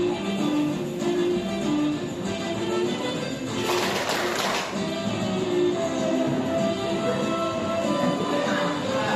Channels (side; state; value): both; identical; correlation 1.00